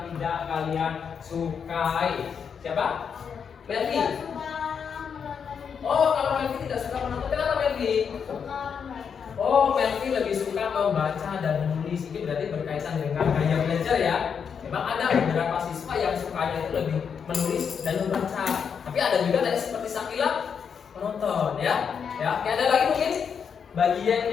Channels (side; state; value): right; quieter; 6.8 dB